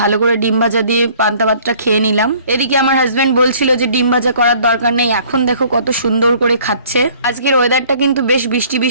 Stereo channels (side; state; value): both; inverted; correlation -0.55